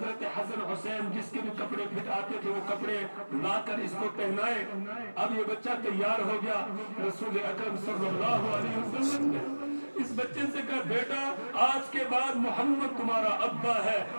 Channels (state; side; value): inverted; both; correlation -1.00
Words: حسن حسین جس کے بھی کپڑے پھٹ آتے تھے وہ کپڑے لا کر اس کو پہنائے۔ اب یہ بچہ تیار ہو گیا، رسول اکرم صلی اللہ علیہ وسلم نے اس بچے سے کہا بیٹا آج کے بعد محمد تمہارا ابا ہے